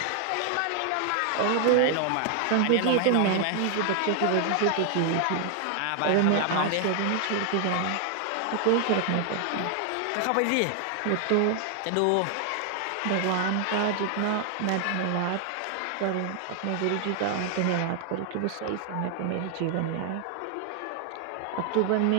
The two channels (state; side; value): different; both; correlation 0.00